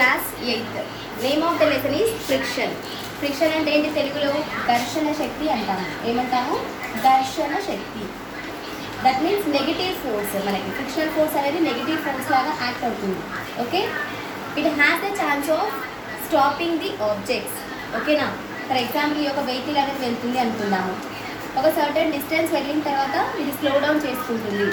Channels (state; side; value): identical; both; correlation 1.00